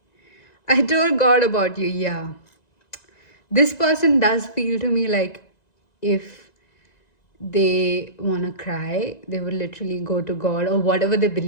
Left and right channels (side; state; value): right; late; 1.9 ms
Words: I told God about you, yeah. This person does feel to me like if they wanna cry, they would literally go to God or whatever they